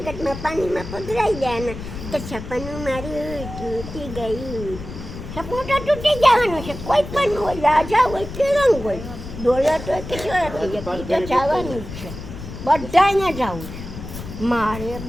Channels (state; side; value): noise; left; rumble, 10 dB below the sound